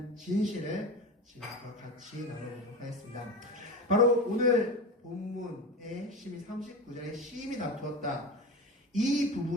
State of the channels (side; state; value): both; normal; correlation 0.27